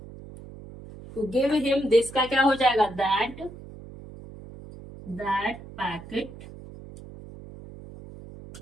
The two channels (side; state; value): right; noise; hum, 16 dB below the sound